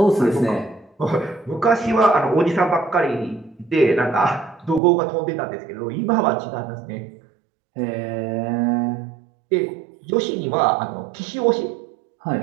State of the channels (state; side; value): drops out; left; at 4.8 s